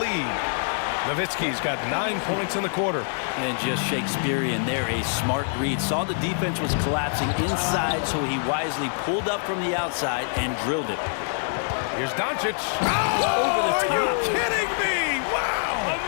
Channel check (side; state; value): right; silent; digital silence